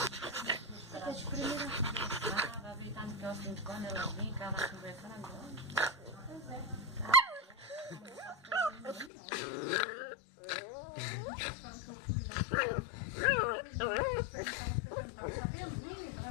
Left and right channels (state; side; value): drops out; right; at 9.1 s